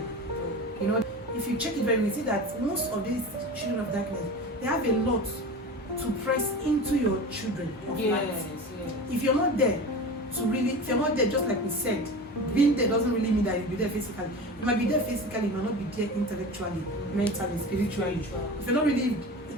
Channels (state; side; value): normal; both; correlation 0.31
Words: If you check it very well, you see that most of these children of darkness, they have a lot to press into your children of light. Yes. If you're not there if you're not there, just like we said, being there doesn't really mean that you'll be there physically. You might be there physically, you might not be there intellectually, mentally, spiritually. If you're not really